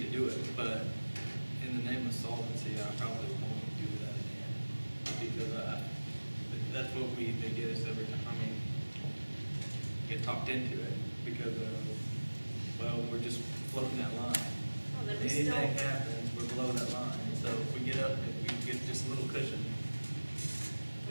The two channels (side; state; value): both; inverted; correlation -1.00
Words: to do it, but in the name of solvency, I probably won't do that again. Because that's what they get us every time, I mean, get talked into it, because well, we're just floating that line. Well, then we Anything still, happens, we're below that line, so if we get up, if we get just a little cushion,